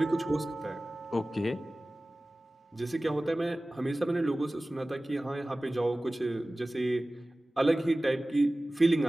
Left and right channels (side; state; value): both; normal; correlation 0.97